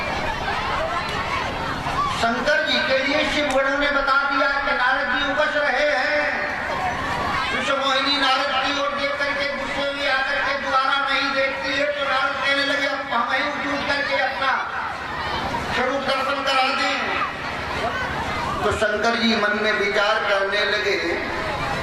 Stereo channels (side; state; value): both; identical; correlation 1.00